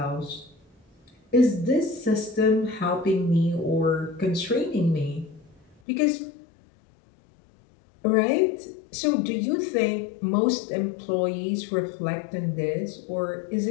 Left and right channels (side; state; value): right; drops out; at 5.8 s